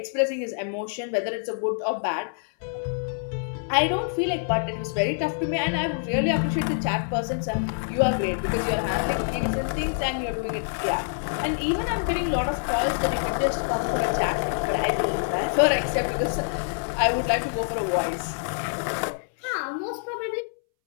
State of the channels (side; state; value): right; silent; 61 dB below the other